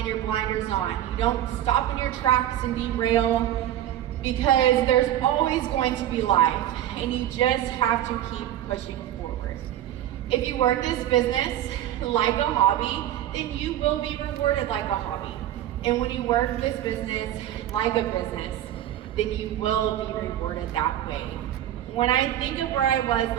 your blinders on. You don't stop in your tracks and derail, because there's always going to be life, and you just have to keep pushing forward. If you work this business like a hobby, then you will be rewarded like a hobby. And when you work this business like a business, then you will be rewarded that way. When I think of where I was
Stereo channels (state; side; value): quieter; left; 12.3 dB